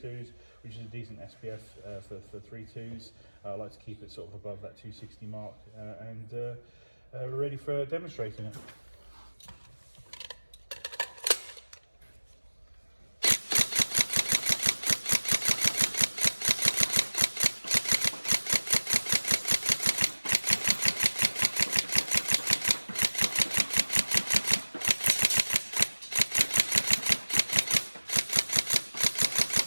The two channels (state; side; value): inverted; both; correlation -1.00